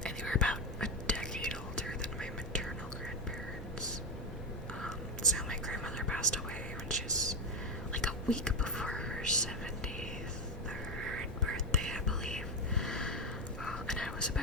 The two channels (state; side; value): normal; both; correlation 0.12